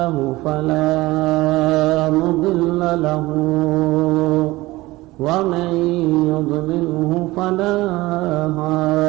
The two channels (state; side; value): quieter; left; 19.5 dB